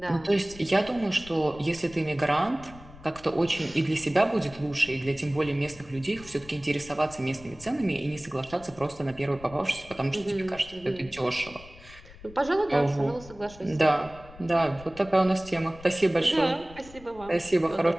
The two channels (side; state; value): left; noise; rumble, 19 dB below the sound